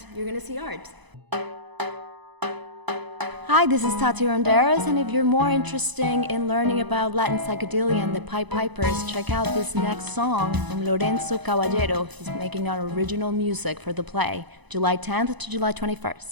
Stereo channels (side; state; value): left; late; 1.0 ms